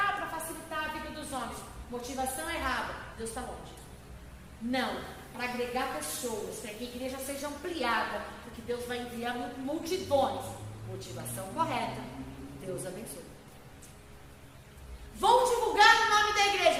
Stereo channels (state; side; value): identical; both; correlation 1.00